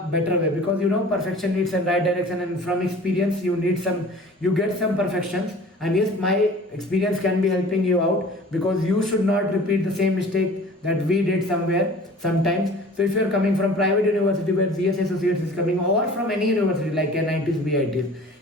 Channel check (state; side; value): normal; both; correlation 0.45